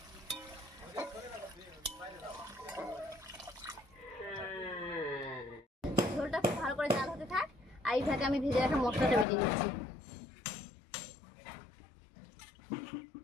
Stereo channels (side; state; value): right; drops out; at 9.2 s